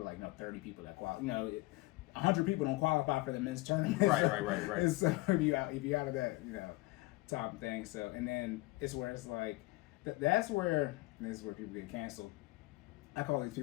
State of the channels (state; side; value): quieter; right; 21.4 dB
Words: 30 people that qualify. 100 people don't qualify for the men's tournament. Right. And so if you out of that top thing. So and then it's where it's like. This is where people get canceled. I call these